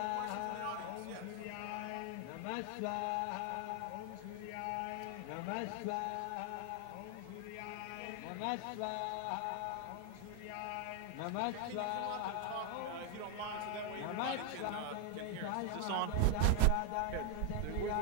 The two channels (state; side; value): different; both; correlation 0.00